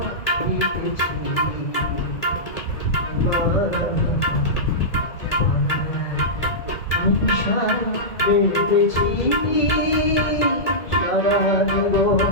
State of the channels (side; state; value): right; late; 2.0 ms